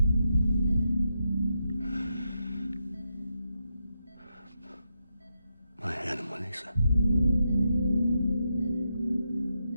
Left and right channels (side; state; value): both; inverted; correlation -0.84